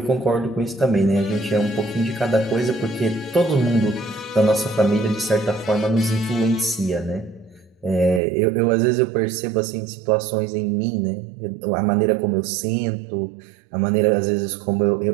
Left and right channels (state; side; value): drops out; left; at 8.2 s